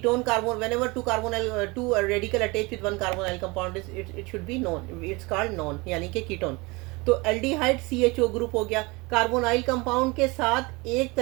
carbon, whenever 2 radical attach with 1 carbonyl compound, it should B non, it's called non, यानी कि कीटोन। तो एल्डिहाइड CHO ग्रुप हो गया। कार्बोनाइल कंपाउंड के साथ एक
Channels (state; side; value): quieter; left; 25.4 dB